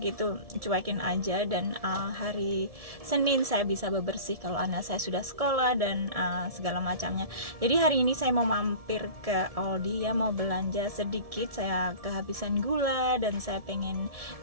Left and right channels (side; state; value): left; late; 1.7 ms